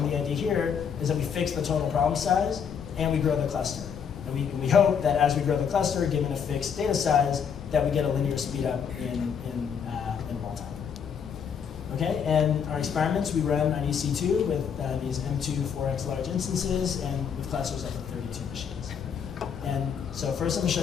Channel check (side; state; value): right; quieter; 7.2 dB